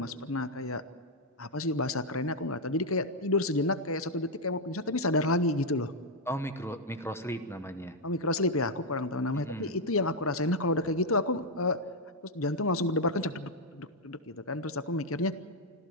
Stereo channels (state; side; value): normal; both; correlation 0.00